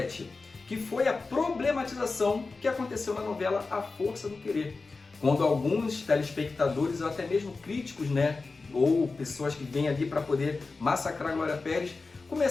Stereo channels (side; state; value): right; quieter; 3.9 dB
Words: que foi a problematização que aconteceu na novela A Força do Querer, quando alguns telespectadores ou até mesmo críticos, ou pessoas que vêm ali para poder massacrar a Glória Pérez,